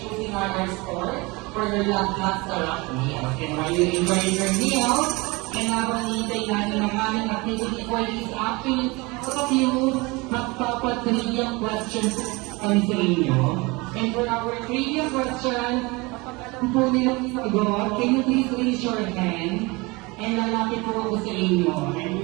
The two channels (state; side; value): quieter; left; 25.0 dB